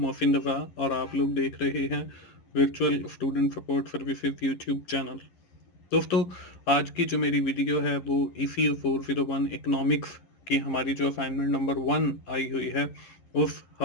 मोहसिन रज़ा और आप लोग देख रहे हैं virtual student support services YouTube channel. दोस्तों, आज की जो मेरी वीडियो है वो ECU 401 इकोनॉमिक्स की हमारी जो असाइनमेंट नंबर 1 आई हुई है उस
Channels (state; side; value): late; right; 11 ms